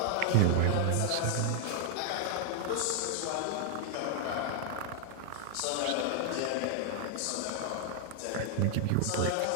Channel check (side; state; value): both; different; correlation 0.00